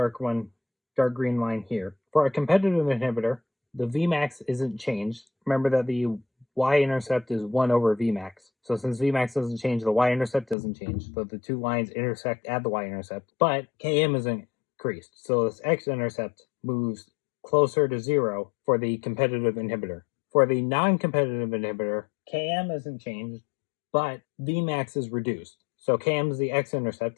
green line here. For a competitive inhibitor, the Vmax isn't changed. Remember that the y-intercept is 1 over Vmax. So since Vmax doesn't change, the y-intercept doesn't change. So the two lines intersect at the y-intercept. But Km is increased. So this x-intercept moves closer to 0 for the competitive inhibitor. For the non-competitive inhibitor, Km isn't changed, but Vmax is reduced. So Km is the x-intercept,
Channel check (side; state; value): right; drops out; at 10.6 s